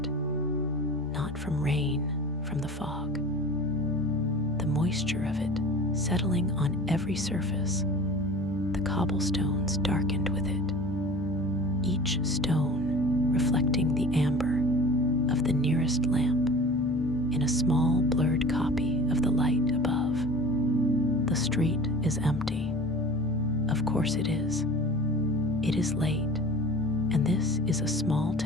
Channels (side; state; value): both; normal; correlation 0.39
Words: not from rain, from the fog. The moisture of it settling on every surface, the cobblestones darkened with it, each stone reflecting the amber of the nearest lamp in a small blurred copy of the light above. The street is empty. Of course it is. It is late, and this is a small